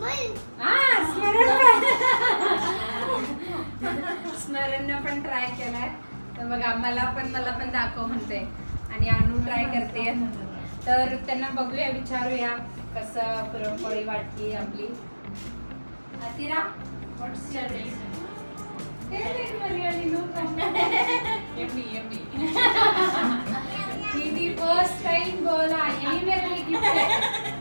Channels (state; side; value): inverted; both; correlation -1.00